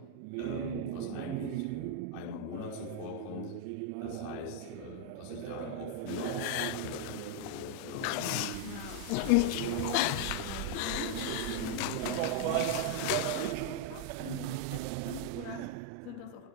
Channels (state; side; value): different; both; correlation 0.00